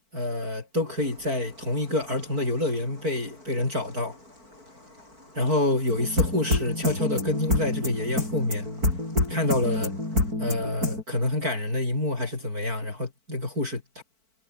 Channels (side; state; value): left; late; 4.5 ms